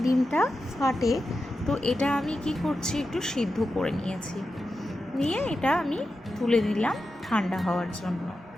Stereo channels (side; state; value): both; normal; correlation 0.90